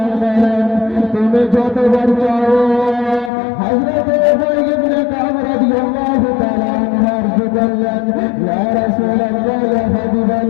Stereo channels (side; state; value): right; drops out; at 3.3 s